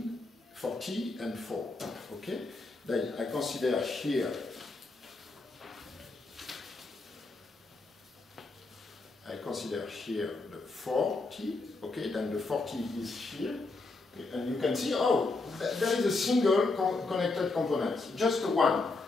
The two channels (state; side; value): quieter; right; 3.5 dB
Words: and 4. Okay? Then I consider here the 40. Okay, then the 40 is here. Okay, and you can see, oh, there is a single connected component, just one.